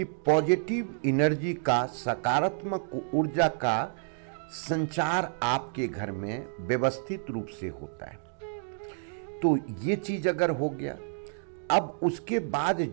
पॉजिटिव एनर्जी का, सकारात्मक ऊर्जा का संचार आपके घर में व्यवस्थित रूप से होता है। तो ये चीज अगर हो गया, अब उसके बाद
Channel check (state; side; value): silent; left; 58 dB below the other